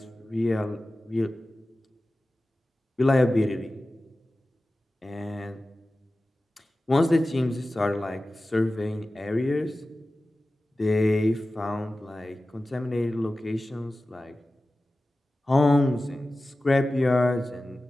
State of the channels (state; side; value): normal; both; correlation 0.95